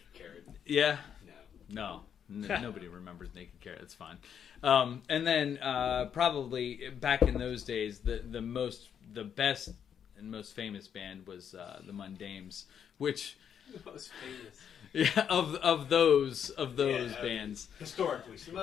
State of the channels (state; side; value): quieter; right; 8.3 dB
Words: Carrot. Yeah. No. Nobody remembers Naked Carrot. It's fine. And then probably back in those days, the best and most famous band was the Mundames, which The most famous. Yeah, of those bands. Historically. The